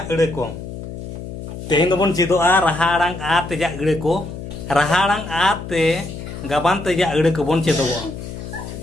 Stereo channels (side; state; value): left; noise; hum, 10 dB below the sound